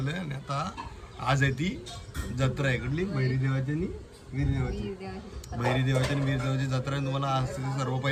आणि आता आज आहे ती जत्रा आहे कुठली भैरीदेवाची आणि वीरदेवाची. भैरीदेवाची आणि वीरदेवाची जत्रा आहे. तुम्हाला आज सर्व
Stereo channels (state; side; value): identical; both; correlation 1.00